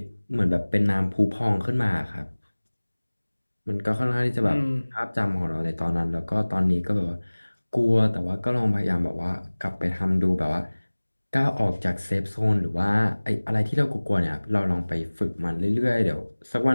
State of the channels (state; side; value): inverted; both; correlation -1.00